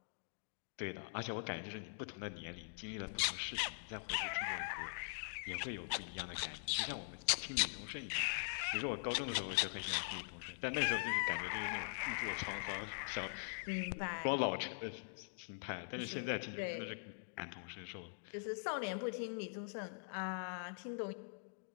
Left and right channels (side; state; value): right; silent; digital silence